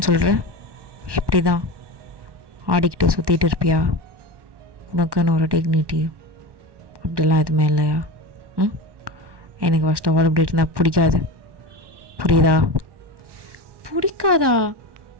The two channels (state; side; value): late; left; 1.1 ms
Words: சொல்கிறேன், இப்படி தான் ஆடிக்கிட்டு சுற்றிட்டு இருப்பியா? உனக்குன்னு ஒரு டிக்னிட்டி அப்படிலாம் எதுவுமே இல்லையா? எனக்கு ஃபஸ்ட் ஆஃப் ஆல் இப்படி இருந்தால் பிடிக்காது, புரியுதா? பிடிக்காதா?